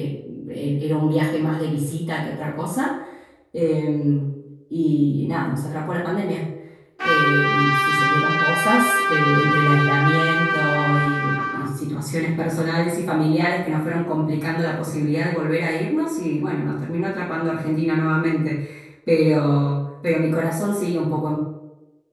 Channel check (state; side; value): identical; both; correlation 1.00